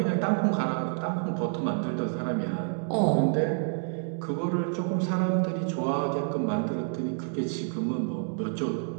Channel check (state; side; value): silent; left; 57 dB below the other